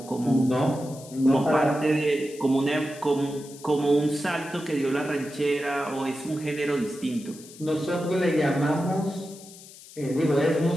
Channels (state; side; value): noise; left; hiss, 19 dB below the sound